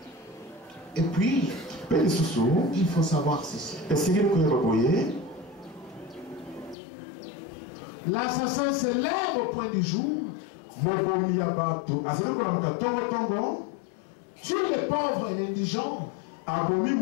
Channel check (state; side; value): drops out; right; at 6.8 s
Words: Et puis, il faut savoir ceci. L'assassin se lève au point du jour. Tue les pauvres et l'indigent.